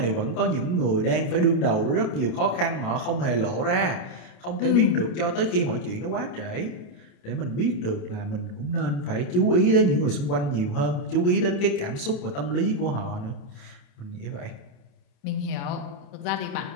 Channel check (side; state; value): right; late; 28 ms